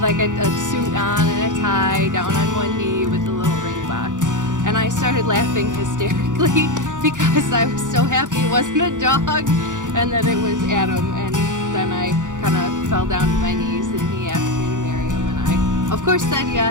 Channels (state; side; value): late; left; 0.87 ms